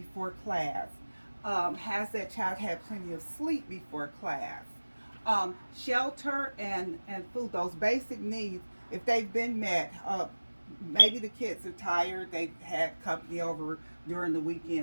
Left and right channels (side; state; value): both; inverted; correlation -1.00